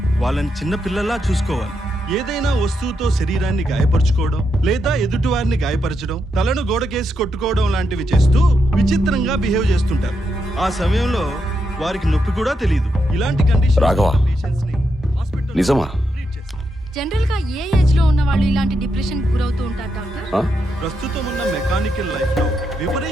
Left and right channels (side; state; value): both; normal; correlation 0.83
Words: వాళ్ళని చిన్న పిల్లల్లా చూసుకోవాలి. ఏదైనా వస్తువుతో శరీరాన్ని గాయపరచుకోవడం లేదా ఎదుటివారిని గాయపరచడం, తలను గోడకేసి కొట్టుకోవడం లాంటివి చేస్తూ విచిత్రంగా బిహేవ్ చేస్తుంటారు. ఆ సమయంలో వారికి నొప్పి కూడా తెలియదు. ఇలాంటి కండిషన్ రాఘవా, నిజమా? జనరల్ గా ఏ ఏజ్ లో ఉన్న వాళ్ళు ఇలాంటి డిప్రెషన్ గురవుతూ ఉంటారు డాక్టర్? ప్రస్తుతం ఉన్న మెకానికల్ లైఫ్ లో